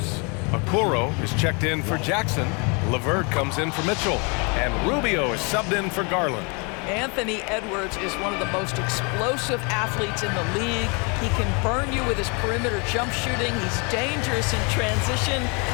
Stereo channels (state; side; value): quieter; right; 32.6 dB